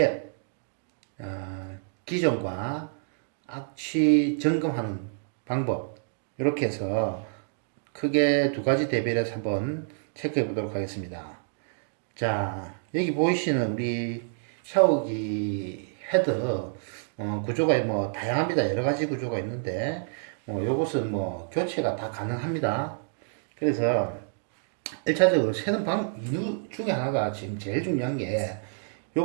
기존과 악취 점검하는 방법, 이렇게 해서 크게 두 가지 대비를 해서 한번 체크해 보도록 하겠습니다. 자, 여기 보이시는 우리 샤워기 헤드 구조가 뭐 다양합니다. 여러 가지 구조가 있는데 요것은 뭐 교체가 다 가능합니다. 그래서 1차적으로 새는 이유 중에 하나가 지금 제일 중요한 게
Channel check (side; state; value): left; silent; digital silence